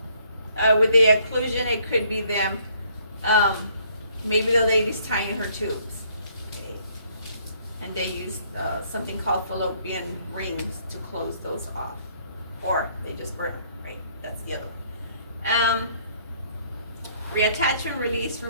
With the occlusion, it could be them, maybe the lady's tying her tubes. Okay. And they use something called fallopian rings to close those off. Or they just burn them, right? That's the other one. Reattachment, release,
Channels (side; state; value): both; inverted; correlation -0.64